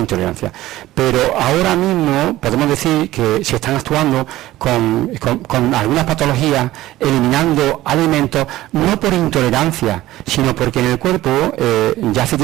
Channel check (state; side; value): quieter; left; 15.9 dB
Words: Pero ahora mismo podemos decir que se están actuando con algunas patologías, eliminando alimentos, no por intolerancia, sino porque en el cuerpo, ya hace